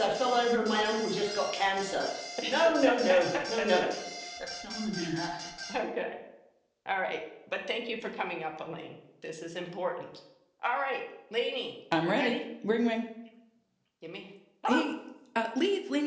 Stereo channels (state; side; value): identical; both; correlation 1.00